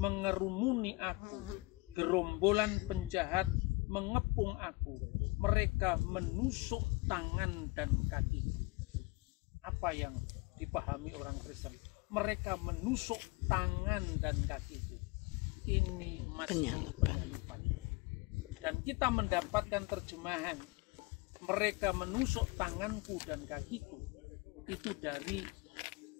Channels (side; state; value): right; quieter; 24.3 dB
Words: aku, gerombolan penjahat mengepung aku, mereka menusuk tangan dan kaki. Apa yang dipahami orang Kristen? Mereka menusuk tangan dan kaki. Ini Mazmur penyalipan. Dan kita mendapatkan terjemahan mereka menusuk tanganku dan kakiku, itu dari